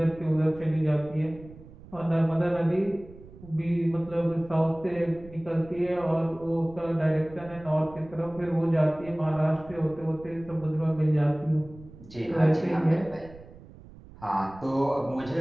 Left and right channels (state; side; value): noise; right; rumble, 19 dB below the sound